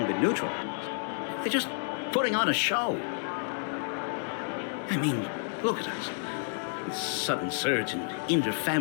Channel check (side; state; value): right; silent; 58 dB below the other